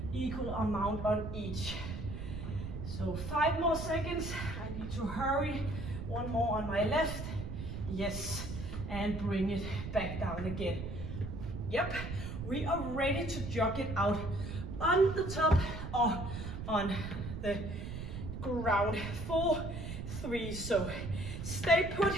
equal amount on each. So 5 more seconds, I need to hurry. 1 more on my left, yes, and bring it back down again. Yep, we are ready to jog it out on the top or on the ground. 4, 3, so stay put,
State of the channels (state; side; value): noise; right; rumble, 6 dB below the sound